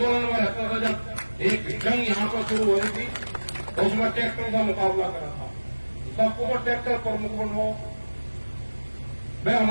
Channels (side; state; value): both; inverted; correlation -1.00